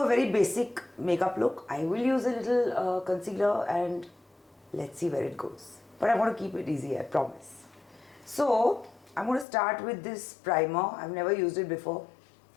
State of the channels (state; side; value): drops out; right; at 9.5 s